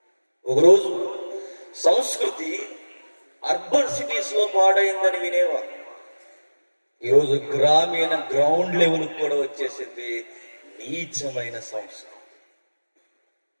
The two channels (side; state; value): both; inverted; correlation -1.00